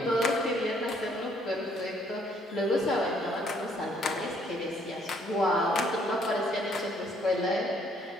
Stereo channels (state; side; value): normal; both; correlation 0.66